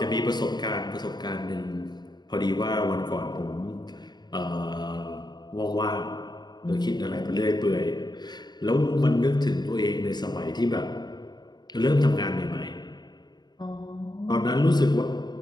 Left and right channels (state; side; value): late; right; 0.20 ms